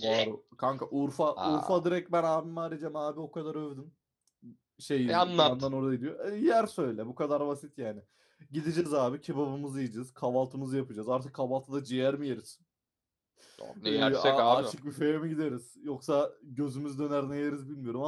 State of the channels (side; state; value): both; identical; correlation 1.00